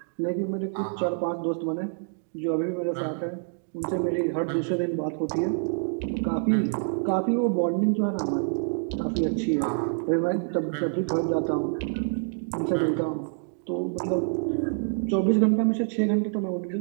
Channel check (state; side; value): silent; left; 60 dB below the other